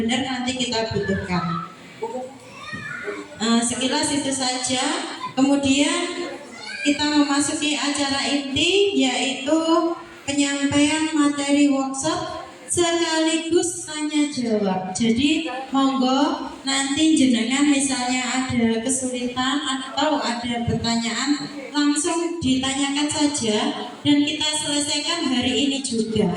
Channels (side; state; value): both; identical; correlation 1.00